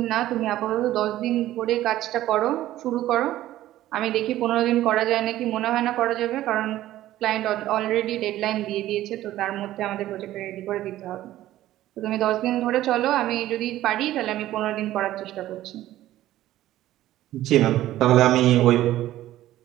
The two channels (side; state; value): left; quieter; 14.3 dB